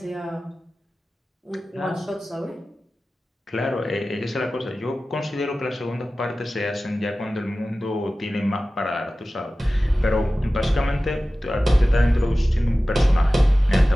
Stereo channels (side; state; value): both; normal; correlation 0.96